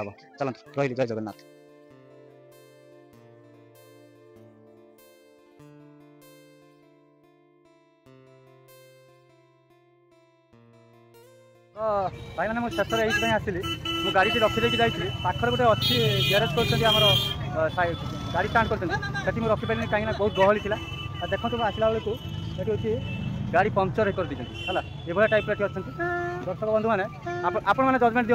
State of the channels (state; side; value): identical; both; correlation 1.00